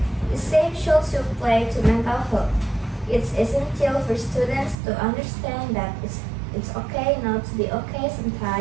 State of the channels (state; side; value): drops out; left; at 4.8 s